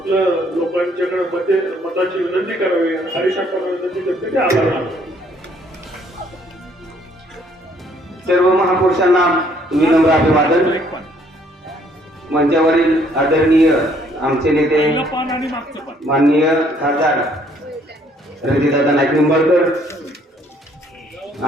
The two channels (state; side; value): normal; both; correlation 0.64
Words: लोकांच्याकडे मताची विनंती करावी. हरीश अप्पांना विनंती करतो की आभार मानतो. सर्व महापुरुषांना विनम्र अभिवादन. मंचावरील आदरणीय आमचे नेते माननीय खासदार रणजितदादा नाईक निंबाळकर,